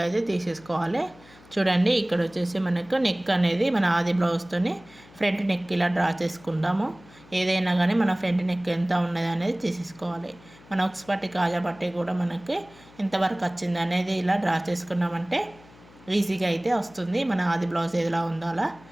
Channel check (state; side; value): noise; left; hum, 24 dB below the sound